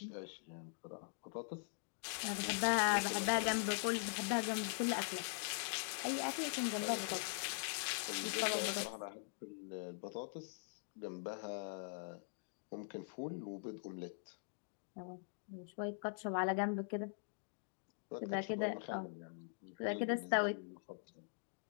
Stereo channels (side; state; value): right; silent; digital silence